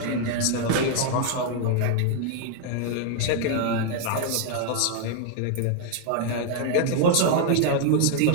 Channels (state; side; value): different; both; correlation 0.00